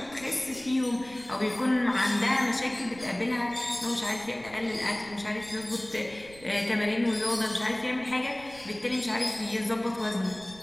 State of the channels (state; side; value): noise; right; rumble, 21 dB below the sound